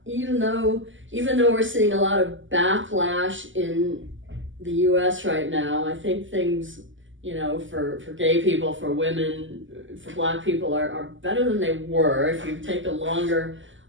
even though we're seeing a lot of backlash in the U.S. right now. I think things for gay people, for women, for Black people are better than they were if you take a longer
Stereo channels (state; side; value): late; left; 0.56 ms